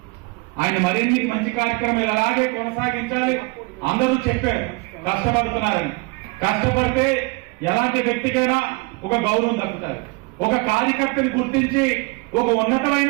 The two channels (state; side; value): quieter; left; 27.4 dB